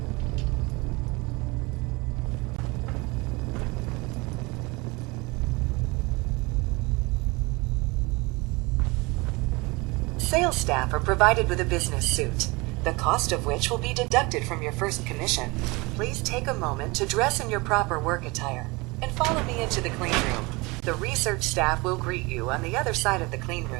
Sales staff are provided with a business suit, the cost of which will be deducted from your first commission. Please take a moment to dress in your proper work attire and follow me into the clean room. The research staff will greet you on the other side of the clean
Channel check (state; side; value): quieter; left; 25.1 dB